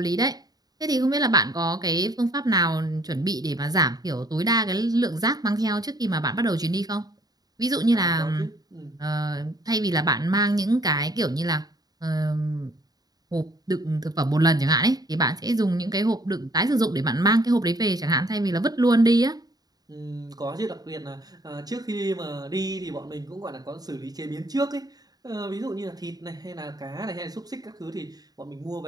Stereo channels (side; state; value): left; late; 0.19 ms